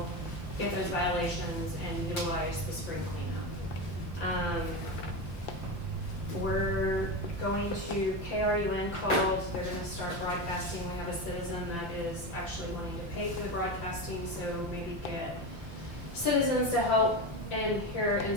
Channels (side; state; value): right; late; 5.8 ms